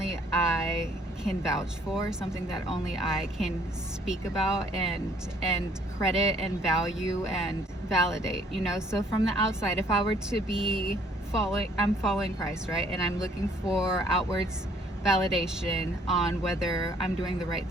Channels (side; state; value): both; normal; correlation 0.62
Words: I can vouch for, something that only I can speak about and credit and value and validate, you know. So from the outside, if I were to be I'm following Christ, right? And I'm looking for outwards validation on whether I'm doing the right